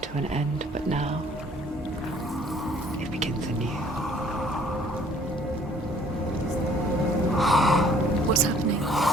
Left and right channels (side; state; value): both; normal; correlation 0.58